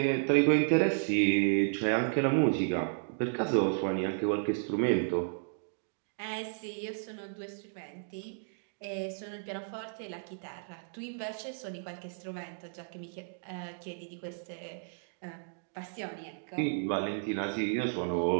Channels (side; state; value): left; silent; digital silence